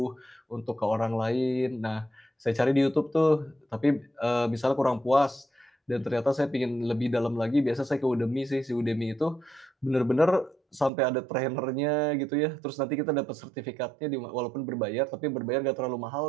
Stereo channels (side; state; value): left; drops out; at 10.9 s